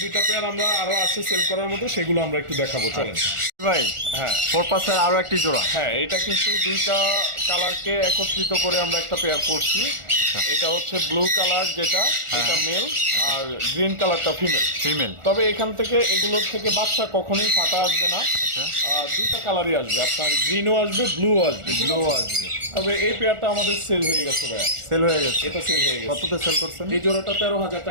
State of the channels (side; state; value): left; late; 1.4 ms